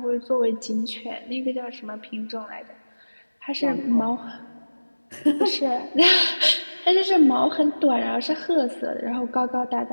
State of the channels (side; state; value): both; inverted; correlation -1.00